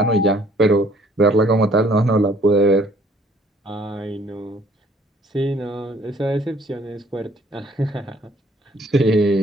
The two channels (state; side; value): normal; both; correlation 0.60